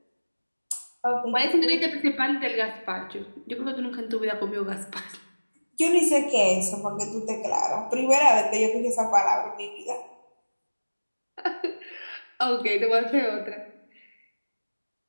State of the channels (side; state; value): both; inverted; correlation -1.00